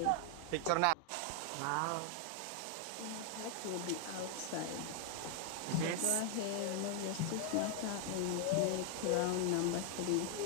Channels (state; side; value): different; both; correlation 0.00